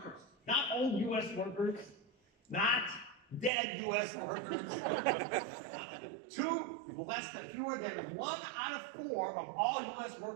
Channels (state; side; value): drops out; left; at 3.5 s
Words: old U.S. workers, not dead U.S. workers, fewer than 1 out of 4 of all U.S.